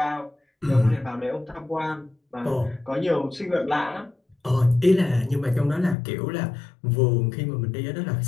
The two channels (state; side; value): drops out; right; at 6.0 s